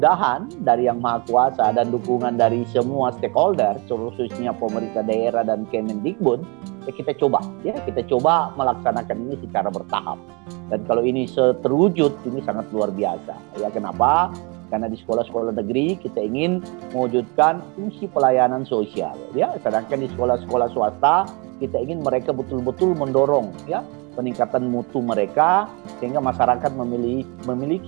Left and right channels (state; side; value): quieter; left; 30.4 dB